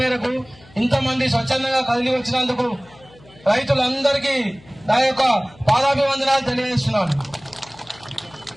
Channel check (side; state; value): left; noise; hum, 25 dB below the sound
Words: మేరకు ఇంతమంది స్వచ్ఛందంగా కదిలి వచ్చినందుకు రైతులందరికీ నా యొక్క పాదాభివందనాలు తెలియజేస్తున్నాను.